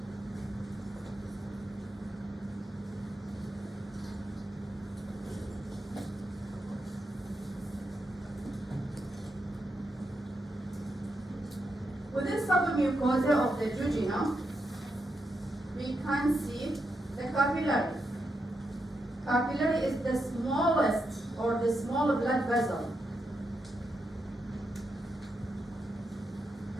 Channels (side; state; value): both; normal; correlation 0.84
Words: Within submucosa of the jejunum, we can see the capillary. Capillary is the smallest or the small blood vessel.